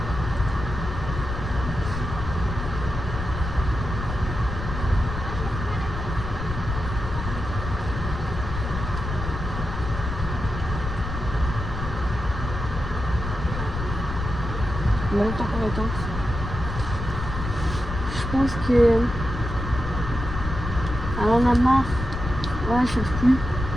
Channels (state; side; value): noise; left; rumble, 6 dB below the sound